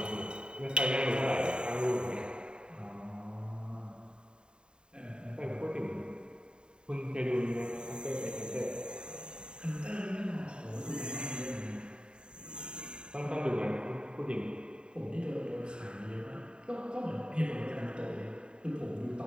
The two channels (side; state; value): left; late; 0.050 ms